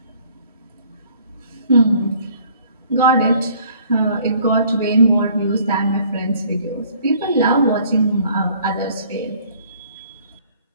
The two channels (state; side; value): inverted; both; correlation -0.58